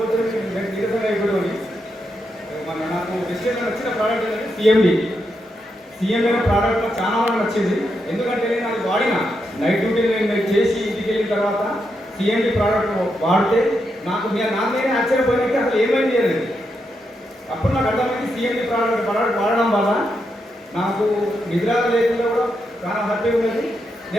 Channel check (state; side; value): normal; both; correlation 0.83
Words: నీరసం అయిపోతుంది. మన నాకు వెస్టేజ్లో నచ్చిన ప్రోడక్ట్ ఏంటంటే సిఎండి అనే ప్రోడక్ట్ నాకు చాలా బాగా నచ్చింది. ఎందుకంటే నేను అది వాడిన నైట్ డ్యూటీ నేను చేసి ఇంటికి వెళ్ళిన తర్వాత సిఎండి ప్రోడక్ట్ వాడితే నాకు నేనే ఆశ్చర్యపోయినట్టు అసలు ఏమైంది చేయలేదు. అప్పుడు నాకు అర్థమైంది సిఎండి ప్రోడక్ట్ వాడడం వల్ల నాకు నిద్ర లేకుండా కూడా చాలా హ్యాపీగా ఉన్నది.